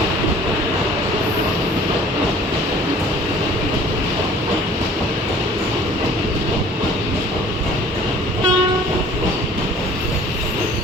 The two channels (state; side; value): normal; both; correlation 0.51